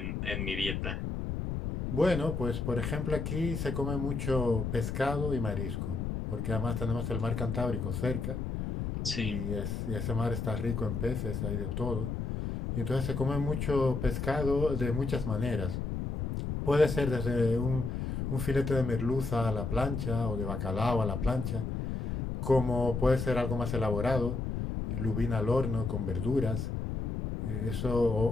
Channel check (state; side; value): noise; left; rumble, 3 dB below the sound